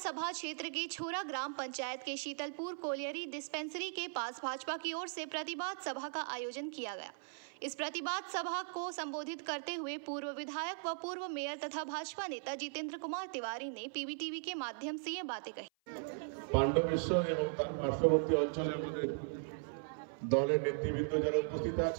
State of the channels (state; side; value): silent; left; 52 dB below the other